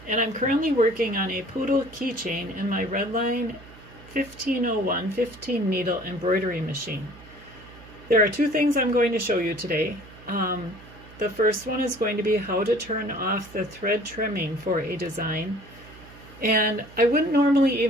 and I'm currently working on a poodle keychain in my Redline 1501 15 needle embroidery machine. There are two things I'm going to show you today. The first one is going to be how to turn off the thread trimming for a design. And I wouldn't normally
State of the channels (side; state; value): right; noise; hum, 20 dB below the sound